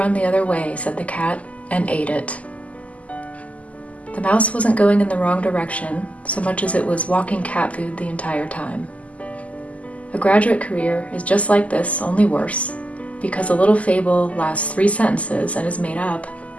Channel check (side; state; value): right; late; 0.069 ms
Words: the other way," said the cat, and ate it. The mouse wasn't going in the wrong direction, so much as it was walking cat food the entire time. A graduate career is just like this, only worse, because A Little Fable lasts 3 sentences and is made up,